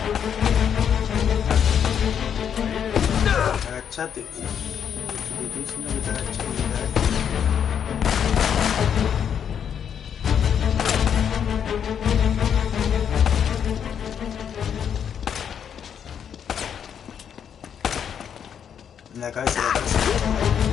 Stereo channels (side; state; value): right; quieter; 8.2 dB